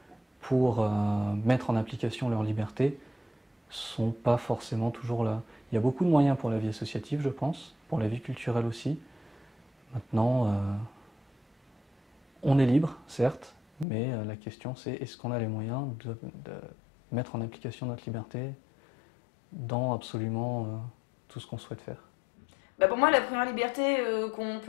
pour mettre en application leur liberté sont pas forcément toujours là. Il y a beaucoup de moyens pour la vie associative, je pense, pour la vie culturelle aussi. Maintenant, on est libre, certes, mais la question c'est est-ce qu'on a les moyens de mettre en application notre liberté dans absolument tout ce qu'on souhaite faire. Pour moi, la première liberté qu'on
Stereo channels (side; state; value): right; drops out; at 13.9 s